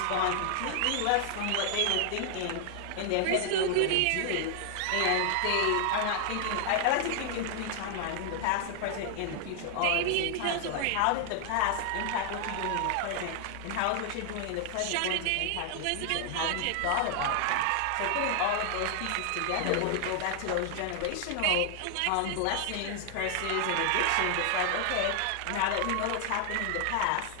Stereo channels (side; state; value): both; different; correlation 0.00